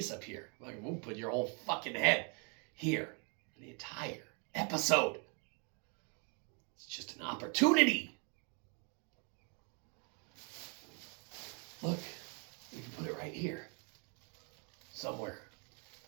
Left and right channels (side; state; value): left; quieter; 36.6 dB